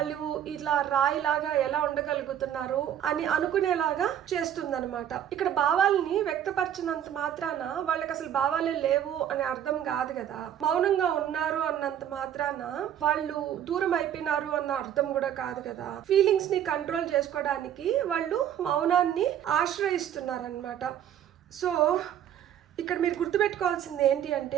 ఇట్లా రాయిలాగా ఎలా ఉండగలుగుతున్నారు అని అనుకునేలాగా చేస్తుందన్నమాట. ఇక్కడ భావాలని వ్యక్తపరచినంత మాత్రాన వాళ్ళకి అసలు భావాలే లేవు అని అర్థం కాదు కదా. మౌనంగా ఉన్నారు అన్నంత మాత్రాన వాళ్ళు దూరం అయిపోయినారు అన్న అర్థం కూడా కాదు కదా. ఫీలింగ్స్ ని కంట్రోల్ చేసుకోవడానికి వాళ్ళు మౌనాన్ని ఆశ్రయిస్తున్నారనమాట. సో ఇక్కడ మీరు గుర్తుపెట్టుకోవాల్సింది ఏంటి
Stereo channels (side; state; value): left; quieter; 10.1 dB